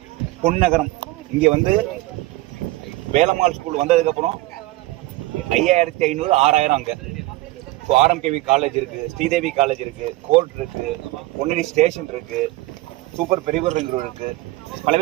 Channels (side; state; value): left; quieter; 19.0 dB